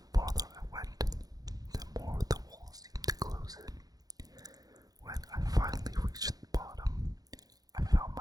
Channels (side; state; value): left; late; 0.18 ms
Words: farther I went, the more the walls seemed to close in. When I finally reached the bottom, I found